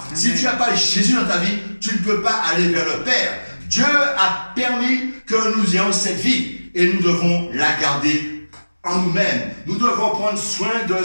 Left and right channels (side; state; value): both; inverted; correlation -1.00